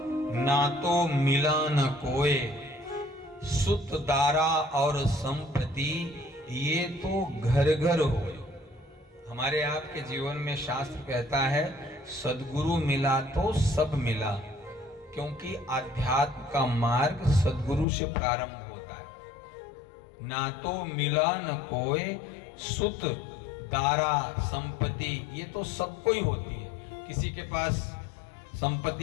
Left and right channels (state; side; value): drops out; right; at 17.9 s